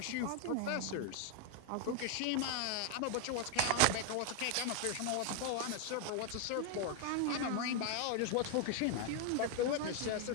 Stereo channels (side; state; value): both; different; correlation 0.00